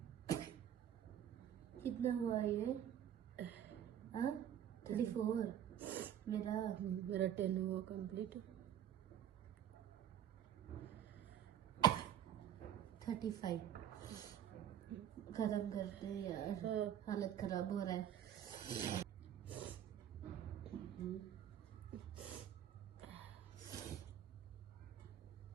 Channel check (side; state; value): left; quieter; 10.2 dB